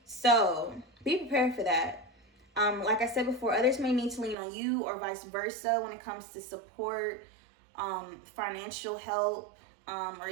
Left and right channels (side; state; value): left; drops out; at 4.4 s